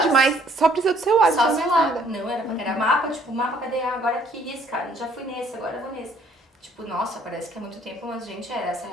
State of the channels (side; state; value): both; normal; correlation 0.62